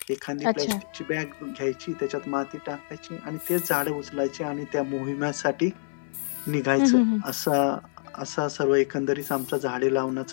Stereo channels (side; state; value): right; silent; 60 dB below the other